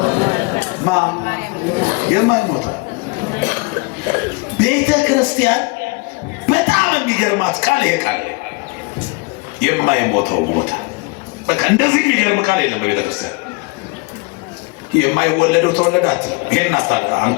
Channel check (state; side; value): quieter; right; 27.9 dB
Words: የማይሞተው ቤተ ክርስቲያን በጣም የሚገርማት ቃል ይሄ ቃል የማይሞተው ሞተ። በቃ እንደዚህ የሚገርም ቃል የለም በቤተ ክርስቲያን። የማይወለደው ተወለደ አትልም። ይሄን